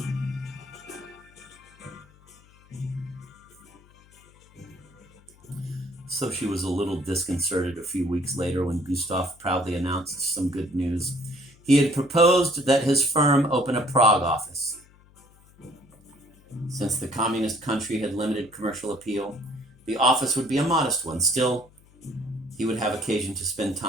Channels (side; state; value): left; noise; hum, 27 dB below the sound